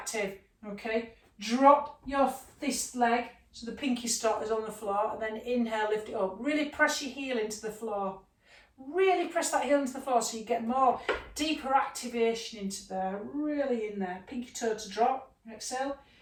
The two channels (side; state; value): both; identical; correlation 1.00